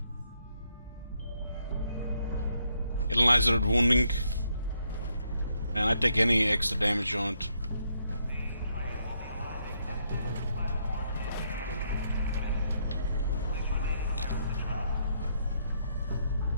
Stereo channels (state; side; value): inverted; both; correlation -0.75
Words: Analyzer wounding. And I take any extra damage on it.